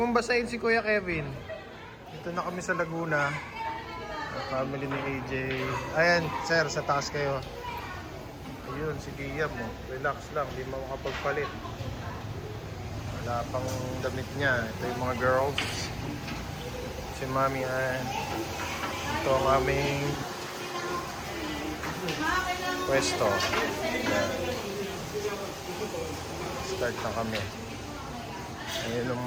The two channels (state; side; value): identical; both; correlation 1.00